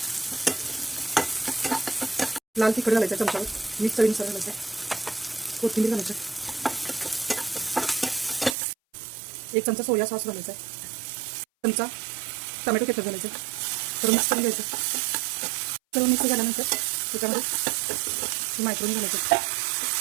लाल तिखट घालायचं चमच्यावर, मीठ चवीनुसार घालायचं, कोथिंबीर घालायचं, 1 चमचा सोया सॉस घालायचा, चमचा टोमॅटो केचप घालायचं, तर मिक्स करून घ्यायचं। सर्व मिक्स झाल्यानंतर त्याच्यामध्ये मायक्रोनी घालायचं,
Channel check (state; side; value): drops out; left; at 8.6 s